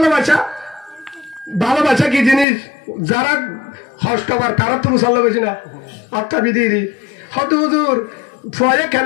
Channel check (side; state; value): right; drops out; at 2.5 s